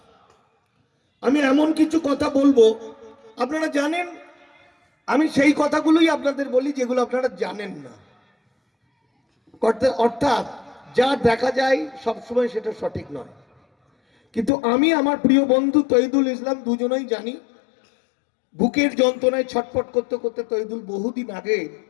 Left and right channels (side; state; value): right; drops out; at 14.5 s